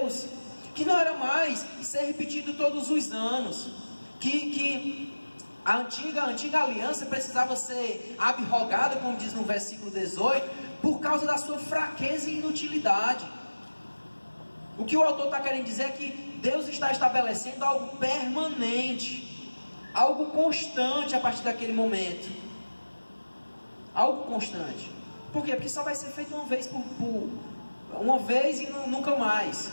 que não era mais ser repetido todos os anos, que a antiga aliança precisava ser abrogada, como diz no versículo 18, por causa da sua fraqueza e inutilidade. O que o autor está querendo dizer é que Deus está estabelecendo algo permanente, algo constante a partir daquele momento. Algo constante. Por quê? Porque só vai ser feito uma vez uma vez e nunca mais.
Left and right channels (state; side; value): inverted; both; correlation -1.00